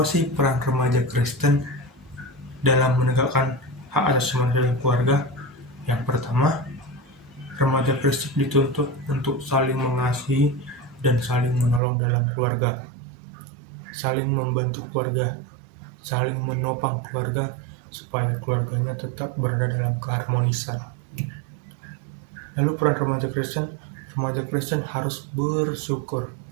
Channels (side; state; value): left; drops out; at 11.8 s